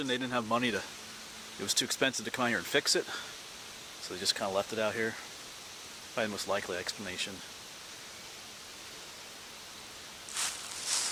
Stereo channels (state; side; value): identical; both; correlation 1.00